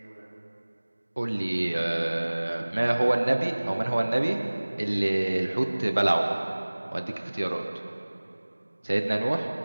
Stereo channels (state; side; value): inverted; both; correlation -1.00